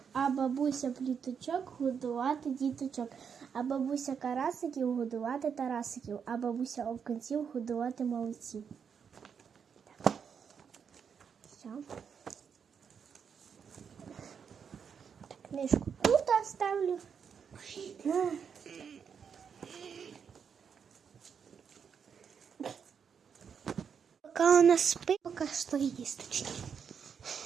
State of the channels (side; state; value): left; quieter; 6.9 dB